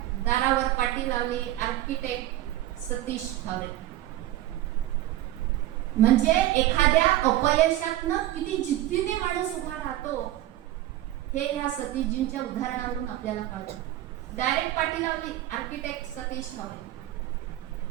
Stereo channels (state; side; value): quieter; left; 14.8 dB